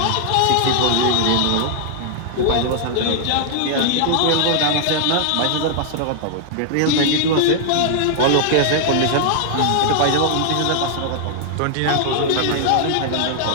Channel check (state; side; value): different; both; correlation -0.01